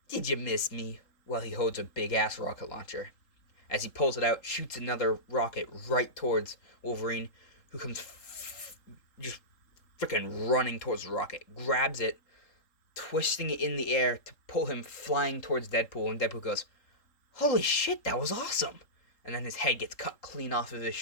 did you miss me? While he holds a big-ass rocket launcher. As he pulls it out, shoots another rocket right towards Wolverine, who comes just freaking running towards the rocket, grabs it, twisting it in the air to pull him flying towards Deadpool, and Deadpool goes, Holy shit, that was awesome! And then his head gets cut clean off of his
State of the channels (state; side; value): late; right; 3.7 ms